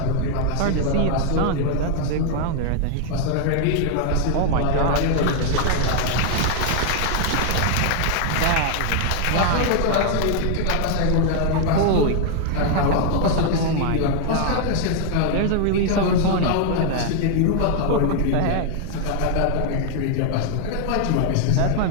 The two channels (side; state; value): both; different; correlation 0.00